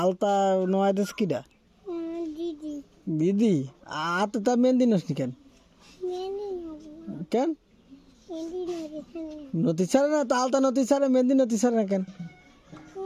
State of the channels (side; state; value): both; identical; correlation 1.00